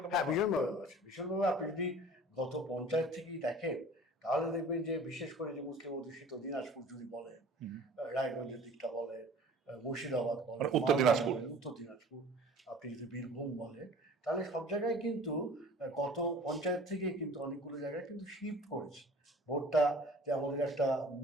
হ্যাঁ, ভীষণভাবে আছে, ভীষণভাবে। আপনি যদি গত পঞ্চায়েত থেকেই দেখেন তাহলে দেখবেন যে বিশেষ করে যে মুসলিম অধ্যুষিত দিনাজপুর যদি বলেন, রায়গঞ্জের দিকটা বলেন, মুর্শিদাবাদ বলেন, উত্তর দিনাজপুর, আপনি যদি বীরভূম বলেন, তাহলে সব জায়গায় কিন্তু গত পঞ্চায়েত থেকে কিন্তু অনেকগুলো জায়গায় কিন্তু শিফট করেছে ভোটটা। যে আমাদের একটা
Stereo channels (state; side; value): normal; both; correlation 0.45